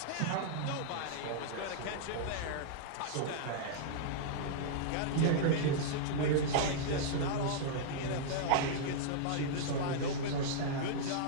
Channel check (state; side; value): different; both; correlation -0.02